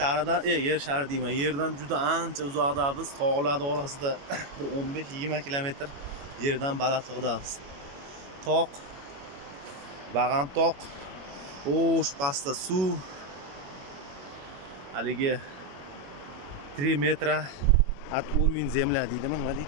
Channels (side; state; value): left; late; 21 ms